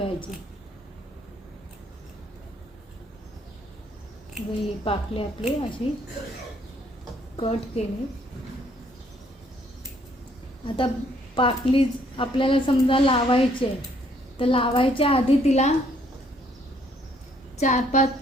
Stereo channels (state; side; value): normal; both; correlation 0.66